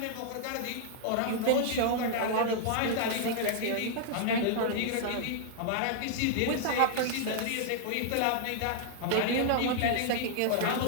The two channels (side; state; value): both; different; correlation -0.01